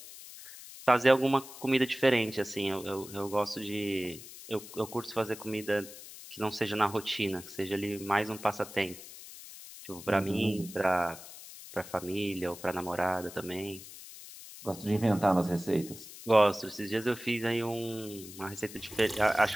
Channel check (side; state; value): left; noise; hiss, 15 dB below the sound